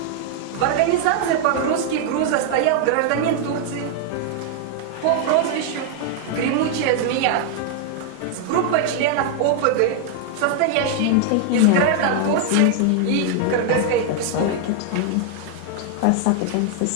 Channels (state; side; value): different; both; correlation 0.00